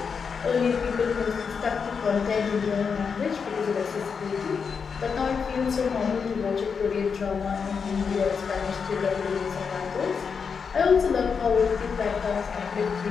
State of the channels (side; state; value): right; quieter; 5.9 dB